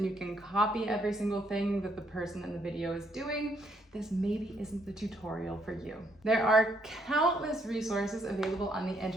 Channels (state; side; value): normal; both; correlation 0.72